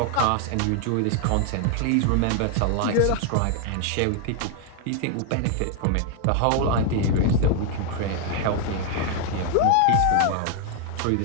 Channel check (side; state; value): both; different; correlation 0.00